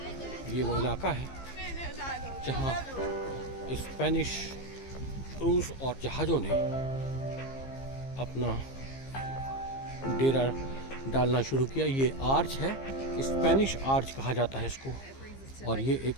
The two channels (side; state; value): right; late; 15 ms